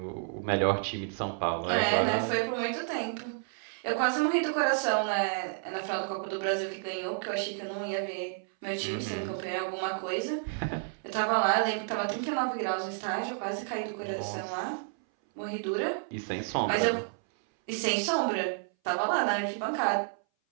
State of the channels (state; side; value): silent; left; 57 dB below the other